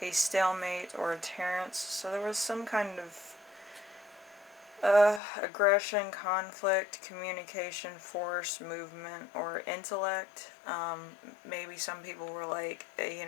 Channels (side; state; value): right; drops out; at 5.2 s